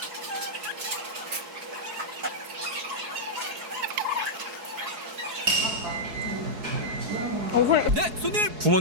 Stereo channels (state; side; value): late; left; 4.7 ms